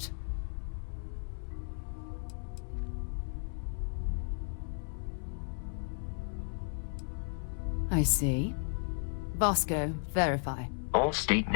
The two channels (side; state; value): right; silent; digital silence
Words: I see. Vasco, verify. All